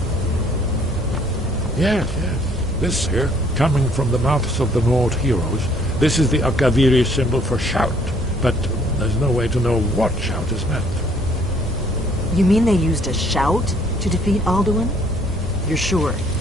Yes. This here, coming from the mouths of the Nord heroes, this is the Akaviri symbol for shout, but there's no way to know what shout is meant. You mean they used a shout to defeat Alduin? You're sure?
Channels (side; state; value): both; normal; correlation 0.62